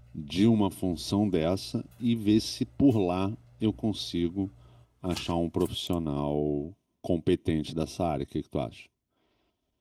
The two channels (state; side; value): identical; both; correlation 1.00